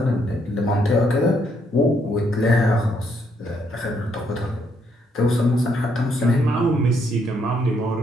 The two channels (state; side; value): normal; both; correlation 0.73